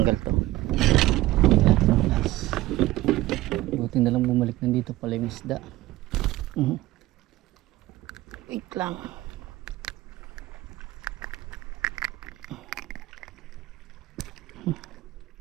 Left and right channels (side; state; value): left; quieter; 17.3 dB